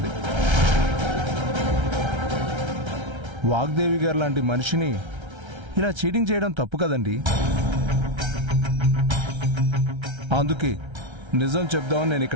వాగ్దేవి గారు లాంటి మనిషిని ఇలా చీటింగ్ చేయడం తప్పు కదండి. అందుకే నిజం చెప్దామని నేను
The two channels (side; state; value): left; late; 1.3 ms